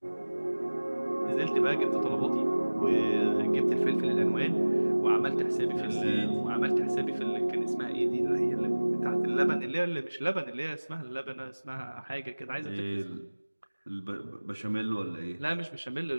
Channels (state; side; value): inverted; both; correlation -1.00